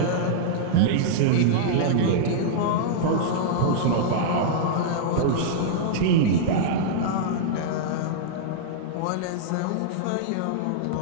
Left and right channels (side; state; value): both; different; correlation -0.02